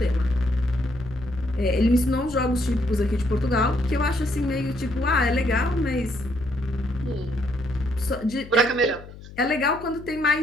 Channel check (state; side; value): noise; left; hum, 17 dB below the sound